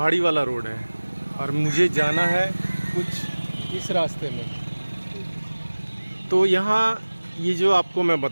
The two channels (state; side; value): inverted; both; correlation -1.00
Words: वाला रोड है और मुझे जाना है कुछ इस रास्ते में। तो यहाँ ये जो आपको मैं